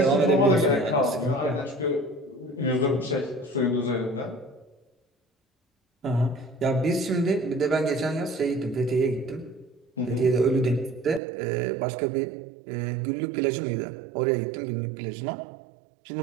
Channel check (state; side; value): drops out; left; at 11.2 s